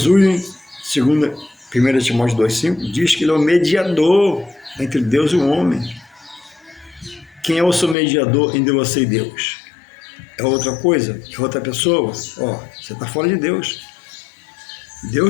segundo 1 Timóteo 2,5, diz que ele é o mediador entre Deus e o homem. Quem é o seu mediador entre você e Deus? É outra coisa? É outra pessoa? Você está fora de Deus.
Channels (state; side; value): drops out; right; at 8.0 s